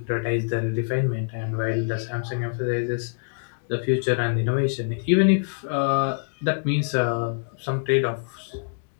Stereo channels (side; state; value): right; silent; digital silence